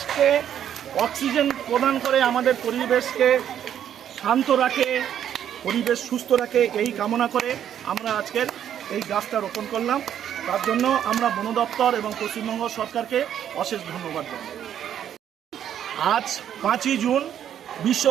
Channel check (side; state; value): left; quieter; 9.9 dB